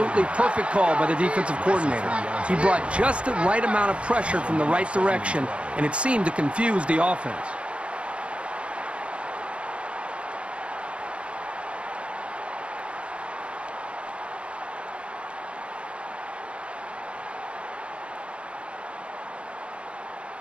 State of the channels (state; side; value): late; left; 0.059 ms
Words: perfect call by the defensive coordinator. He brought just the right amount of pressure from the right direction, and it seemed to confuse the offense.